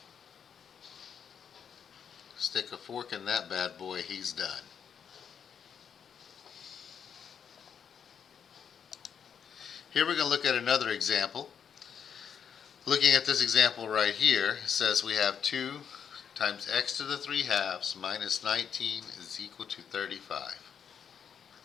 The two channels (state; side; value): quieter; right; 7.6 dB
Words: Stick a fork in that bad boy, he's done. Here we're going to look at another example. Looking at this example right here, it says we have 2 times x to the 3/2 minus 19 is equal to 35.